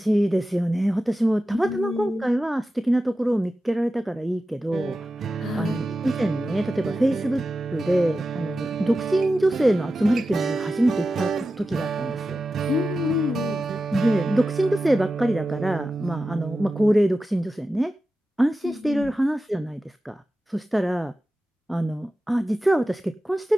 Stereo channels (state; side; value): normal; both; correlation 0.93